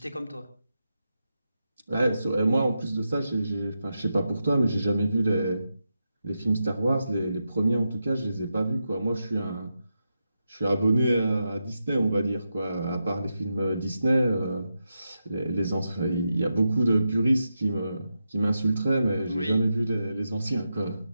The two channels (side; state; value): both; inverted; correlation -0.87